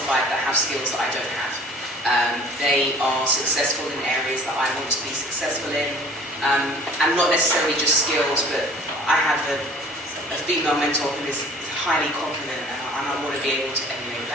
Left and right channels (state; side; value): normal; both; correlation 0.49